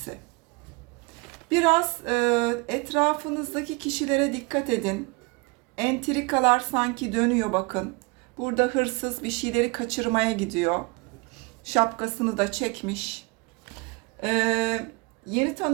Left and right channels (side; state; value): left; quieter; 27.3 dB